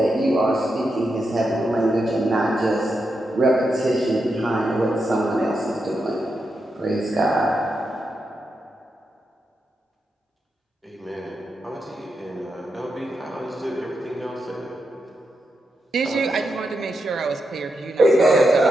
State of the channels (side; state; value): both; normal; correlation 0.86